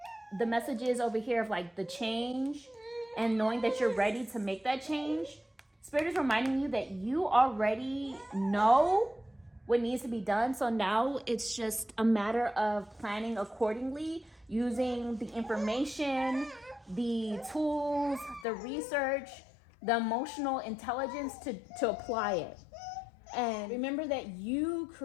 the messages over here of like the change and knowing that you're ready to make that change. Spirit is reminding you that you already know what needs to be done. So now it's just a matter of planning accordingly, using the information, the tools, the research, the emotional intelligence to apply it. And remember that you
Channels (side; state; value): right; drops out; at 18.4 s